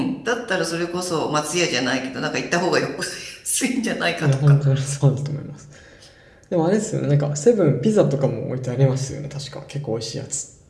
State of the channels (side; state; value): both; identical; correlation 1.00